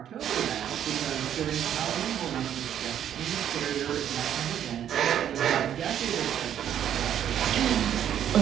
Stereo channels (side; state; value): left; quieter; 10.0 dB